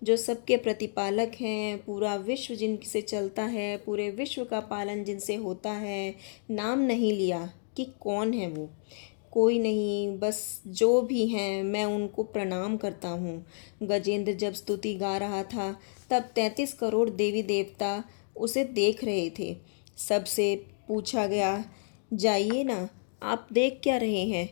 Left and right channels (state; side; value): silent; right; digital silence